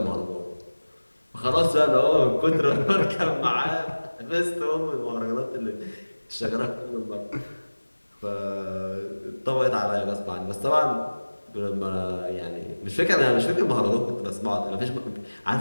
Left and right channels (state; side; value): inverted; both; correlation -1.00